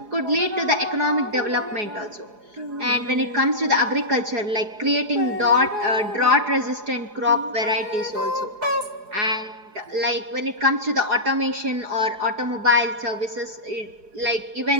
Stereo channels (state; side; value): late; left; 4.8 ms